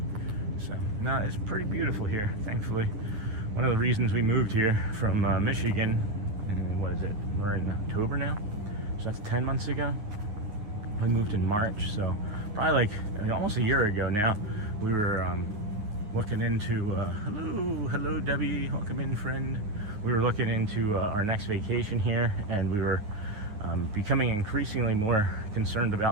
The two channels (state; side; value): late; left; 9.7 ms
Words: So no, it's pretty beautiful here, thankfully. One of the reasons we moved here from Michigan, and what is it, we're in October now, so that's 10 months ago. We moved in March, so probably like almost a year ago now. We were looking into, hello Debbie, welcome in friend. We were looking into our next vacation here, and we were becoming increasingly more concerned